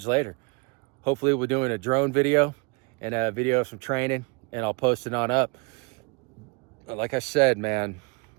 later. Hopefully we're doing a drone video and a video of some training, and I'll post it on up. But like I said, man,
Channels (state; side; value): quieter; left; 31.1 dB